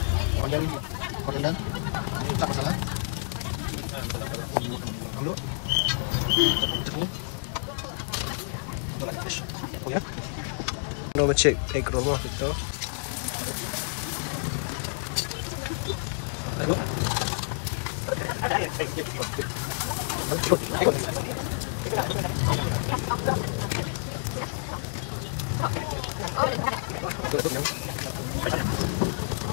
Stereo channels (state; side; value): silent; right; digital silence